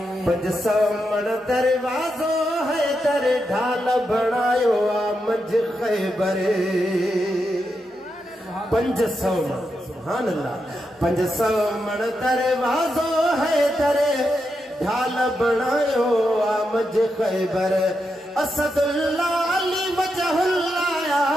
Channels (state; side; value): normal; both; correlation 0.85